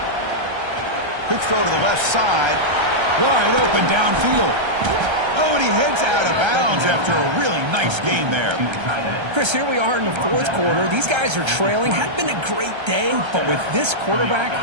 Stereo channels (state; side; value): late; left; 1.3 ms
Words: Quick throw to the left side. Wide open downfield. Oh, and he heads out of bounds after a really nice gain there. Chris, here we are in the fourth quarter. These guys are trailing. Hadn't been a great day, but with this